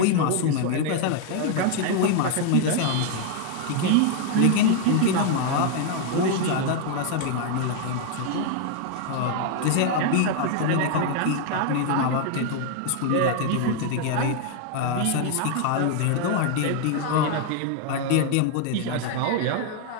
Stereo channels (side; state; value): both; different; correlation 0.00